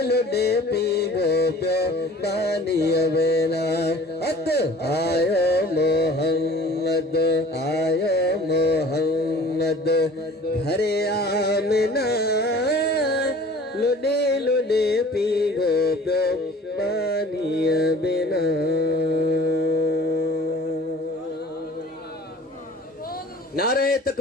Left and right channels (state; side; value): normal; both; correlation 0.47